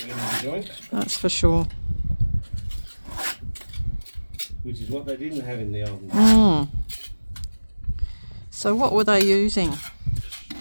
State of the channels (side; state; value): both; inverted; correlation -1.00